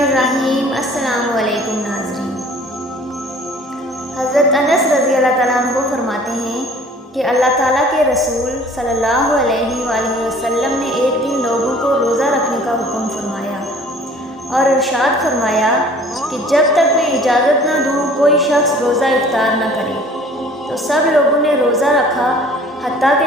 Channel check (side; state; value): both; normal; correlation 0.51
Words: السلام علیکم ناظرین۔ حضرت انس رضی اللہ تعالیٰ عنہ فرماتے ہیں کہ اللہ تعالیٰ کے رسول صلی اللہ علیہ وآلہ وسلم نے ایک دن لوگوں کو روزہ رکھنے کا حکم فرمایا اور ارشاد فرمایا کہ جب تک میں اجازت نہ دوں کوئی شخص روزہ افطار نہ کرے۔ تو سب لوگوں نے روزہ رکھا، حتیٰ